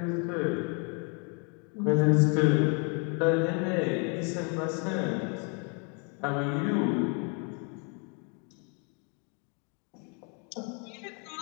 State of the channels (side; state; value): right; quieter; 36.8 dB